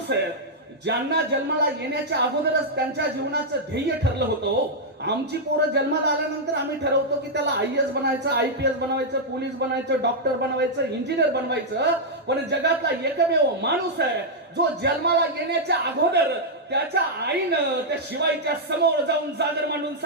आहे ज्यांना जन्माला येण्याच्या अगोदरच त्यांच्या जीवनाचं ध्येय ठरलं होतं. आमची पोरं जन्माला आल्यानंतर आम्ही ठरवतो की त्याला IAS बनायचं, IPS बनवायचं, पोलीस बनायचं, डॉक्टर बनवायचं, इंजिनियर बनवायचं, पण जगातला एकमेव माणूस आहे जो जन्माला येण्याच्या अगोदर त्याच्या आईनं त्या शिवाईच्या समोर जाऊन जागर मांडून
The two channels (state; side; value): normal; both; correlation -0.05